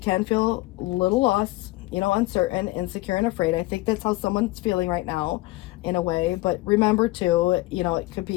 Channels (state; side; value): quieter; right; 19.7 dB